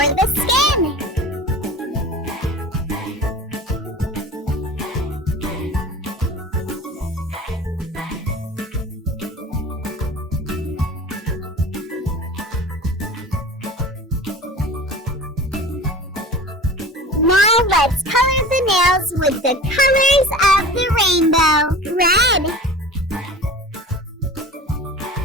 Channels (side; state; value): both; normal; correlation 0.38